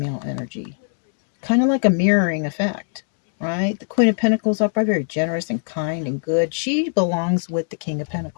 energy. Kind of like a mirroring effect, right? The Queen of Pentacles up are very generous and kind and good. She belongs with the King of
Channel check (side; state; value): right; silent; digital silence